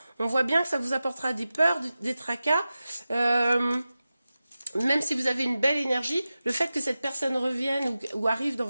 On voit bien que ça vous apportera des peurs, des tracas. Même si vous avez une belle énergie, le fait que cette personne revienne ou arrive dans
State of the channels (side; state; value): both; inverted; correlation -0.94